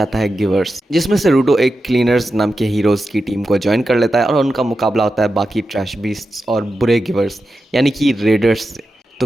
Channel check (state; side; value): normal; both; correlation 0.90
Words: है गिवर्स, जिसमें से रूडो एक क्लीनर्स नाम के हीरोज़ की टीम को ज्वाइन कर लेता है और उनका मुकाबला होता है बाकी ट्रैश बीस्ट्स और बुरे गिवर्स यानी कि रेडर्स से।